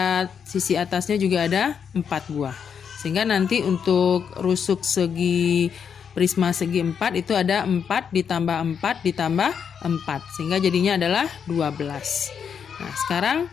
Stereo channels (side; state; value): right; quieter; 7.2 dB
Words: sisi atasnya juga ada 4 buah. Sehingga nanti untuk rusuk segi prisma segi 4 itu ada 4 ditambah 4 ditambah 4. Sehingga jadinya adalah 12. Nah, sekarang